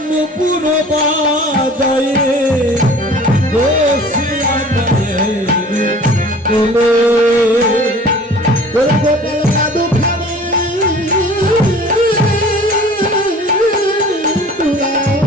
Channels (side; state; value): both; normal; correlation 0.46